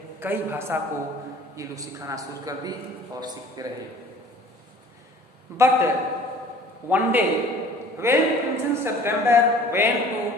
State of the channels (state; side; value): normal; both; correlation 0.49